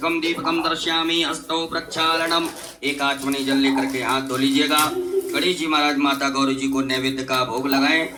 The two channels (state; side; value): identical; both; correlation 1.00